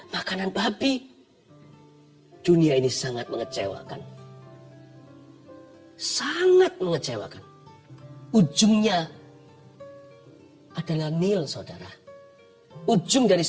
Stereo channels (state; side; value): identical; both; correlation 1.00